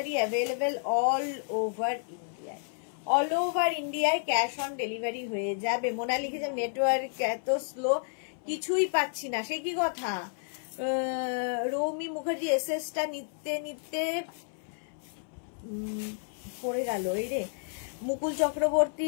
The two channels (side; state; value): right; silent; 57 dB below the other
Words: available all over ইন্ডিয়ায়, অল ওভার ইন্ডিয়ায় ক্যাশ অন ডেলিভারি হয়ে যাবে। মোনা লিখেছে নেটওয়ার্ক এত স্লো, কিছুই পাচ্ছি না, সে কি কথা? রৌমি মুখার্জি এসএসটা নিতে নিতে পড়ে গেল, এই রে। মুকুল চক্রবর্তী